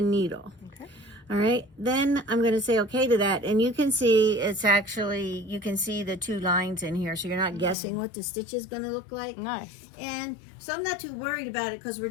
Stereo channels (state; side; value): drops out; right; at 7.8 s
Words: needle. All right, then I'm going to say okay to that, and you can see it's actually, you can see the 2 lines in here, so you're not guessing what the stitch is going to look like. Nice. And so I'm not too worried about it because we're